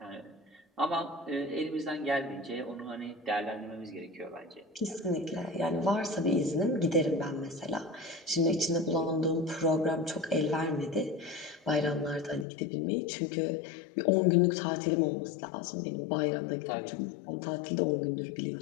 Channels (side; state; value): right; drops out; at 12.5 s